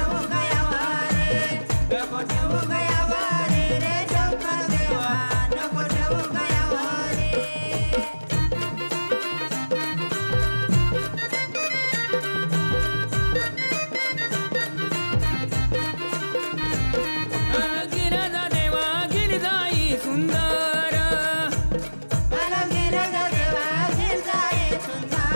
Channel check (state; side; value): inverted; both; correlation -1.00